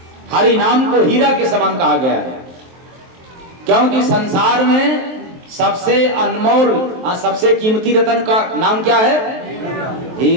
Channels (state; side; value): late; left; 23 ms